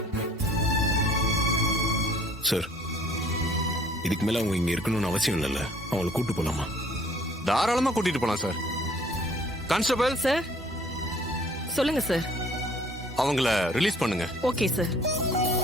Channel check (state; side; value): normal; both; correlation 0.56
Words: சார், இதுக்கு மேல அவங்க இங்க இருக்கணும்னு அவசியம் இல்லைல்ல. அவங்களை கூட்டு போலாமா? தாராளமா கூட்டிட்டு போலாம் சார். கான்ஸ்டபிள் சார், சொல்லுங்க சார். அவங்கள ரிலீஸ் பண்ணுங்க. Okay sir.